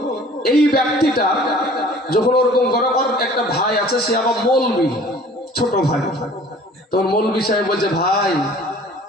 এই ব্যক্তিটা যখন ওরকম গরগর, একটা ভাই আছে, সে আবার মৌলবি, ছোট ভাই। তখন মৌলবি সাহেব বলছে ভাই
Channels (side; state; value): both; normal; correlation 0.49